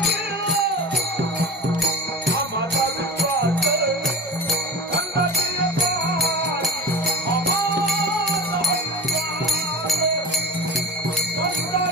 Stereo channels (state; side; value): normal; both; correlation 0.35